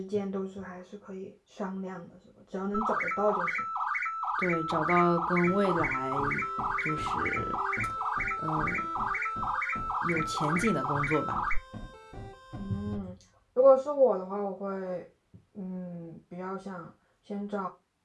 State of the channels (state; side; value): identical; both; correlation 1.00